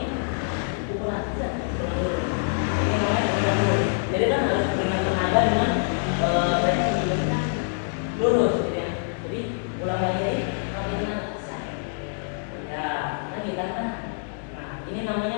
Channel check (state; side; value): silent; right; digital silence